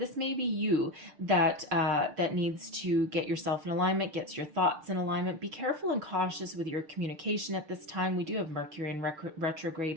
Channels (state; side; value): late; left; 6.6 ms